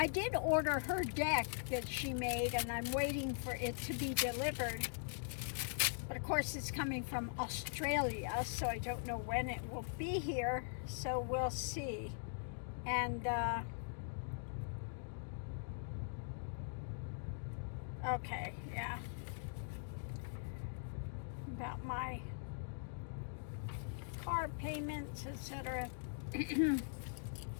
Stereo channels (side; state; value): right; silent; digital silence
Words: did order her deck that she made, and I'm waiting for it to be delivered. But of course, it's coming from Australia, so I don't know when it will be here. So we'll see. And okay, yeah. About my car payments, etc.